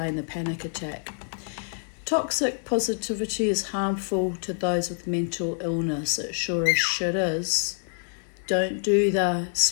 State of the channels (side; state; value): right; silent; digital silence